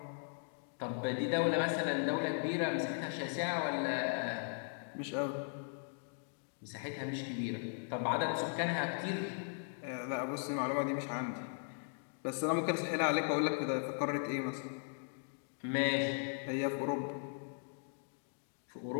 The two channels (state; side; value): silent; right; digital silence